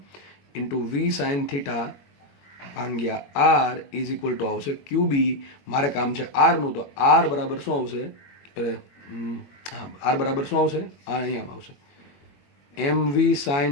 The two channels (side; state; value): right; late; 21 ms